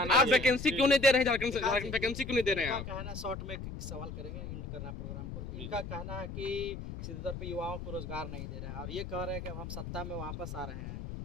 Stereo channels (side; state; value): left; noise; rumble, 8 dB below the sound